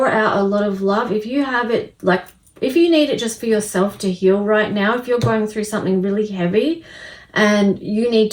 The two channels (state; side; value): identical; both; correlation 1.00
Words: out a lot of love. If you have it, like if you need it just for yourself to heal right now, if you're going through something really heavy and you need